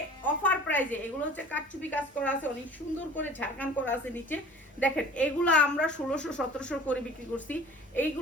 অফার প্রাইজে এগুলো হচ্ছে কাটচুপি কাজ করা আছে, অনেক সুন্দর করে ঝাড়খান করা আছে নিচে। দেখেন এগুলো আমরা 1600-1700 করে বিক্রি করছি,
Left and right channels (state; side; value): normal; both; correlation 0.46